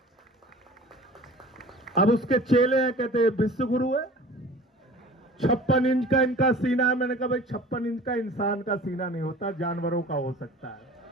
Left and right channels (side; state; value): both; normal; correlation 0.43